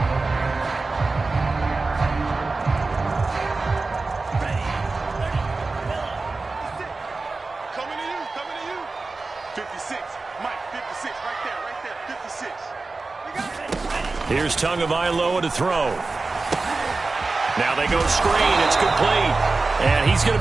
Here's Tagovailoa to throw. Now they go screen. It's complete. And he's going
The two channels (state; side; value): quieter; left; 3.7 dB